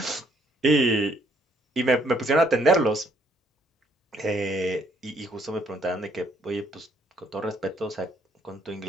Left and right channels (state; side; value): normal; both; correlation 0.68